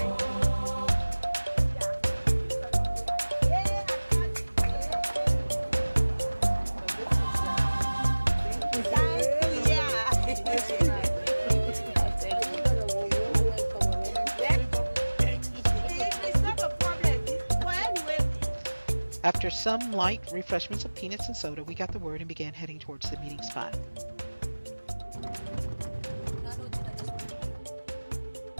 After some light refreshments of peanuts and soda, we got the word and began heading towards the meeting spot.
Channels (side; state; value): both; inverted; correlation -1.00